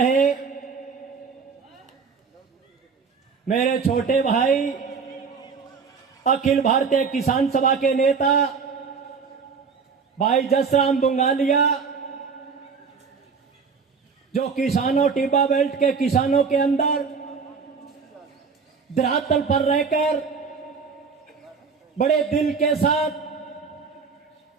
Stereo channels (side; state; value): left; quieter; 5.5 dB